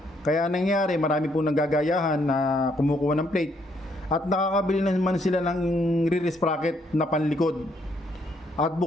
Kaya nangyari, marami pong nanggagayahan na kumukuha ng plate. At nakakabili naman sila ng rear sprocket na panlikod. At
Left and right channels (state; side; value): normal; both; correlation 0.71